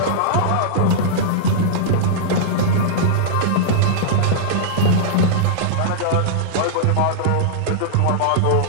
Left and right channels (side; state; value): both; different; correlation -0.02